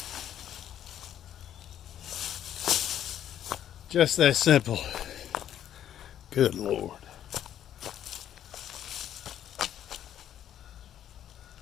Just that simple. Good Lord.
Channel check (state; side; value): quieter; right; 10.7 dB